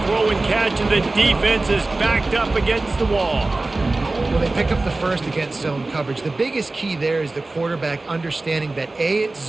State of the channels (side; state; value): left; quieter; 3.2 dB